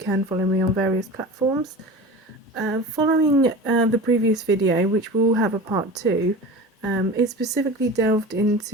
follow me on various platforms. Following the previous video, which will have a part 2, it specifically delved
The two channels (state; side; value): normal; both; correlation 0.34